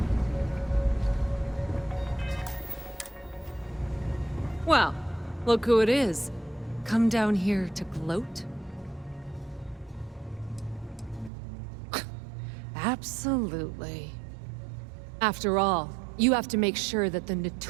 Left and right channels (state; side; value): drops out; left; at 11.3 s